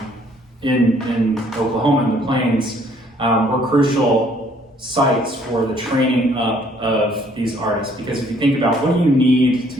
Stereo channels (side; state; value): both; normal; correlation 0.62